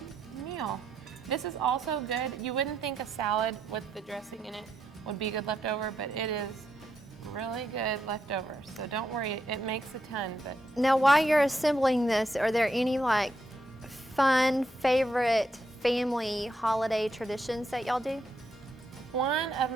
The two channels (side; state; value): both; normal; correlation 0.80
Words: meal. This is also good. You wouldn't think a salad with the dressing in it would be good leftover, but it is really good leftover. So don't worry, it makes a ton. But now, while you're assembling this, are there any like fun, favorite family holiday traditions that y'all do? one of